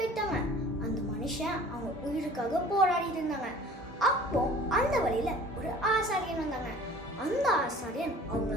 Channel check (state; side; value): normal; both; correlation 0.46